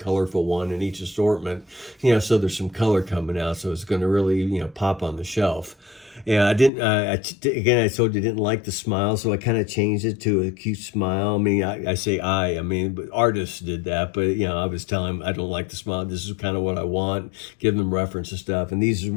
one in each assortment, so there's some color coming out, so it's going to really, pop on the shelf. Yeah, I didn't. Again, I told you I didn't like the smile, so I kind of changed it to a cute smile. I mean, I say but artists did that. But I was telling them I don't like the smile. This is kind of what I want. Give them reference and stuff, and these is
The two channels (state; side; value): drops out; right; at 6.7 s